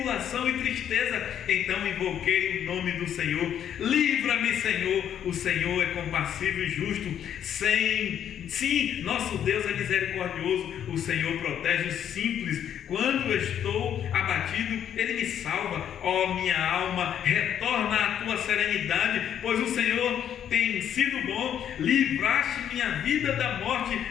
e tristeza, então invoquei o nome do Senhor. Livra-me, Senhor. O Senhor é compassivo e justo. Sim, nosso Deus é misericordioso. O Senhor protege os simples. Quando eu estou abatido, Ele me salva. Ó minha alma, retorna à tua serenidade, pois o Senhor tem sido bom. Livraste minha vida da morte,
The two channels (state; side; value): quieter; right; 9.6 dB